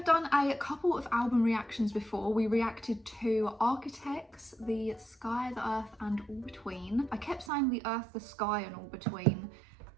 done a couple of album reactions before. We reacted to Architects, The Sky, The Earth and All Between. I kept saying The Earth, The Sky and All Between.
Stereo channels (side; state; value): left; drops out; at 7.5 s